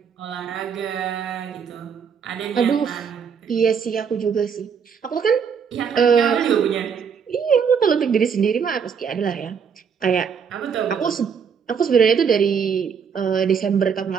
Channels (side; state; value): left; quieter; 6.8 dB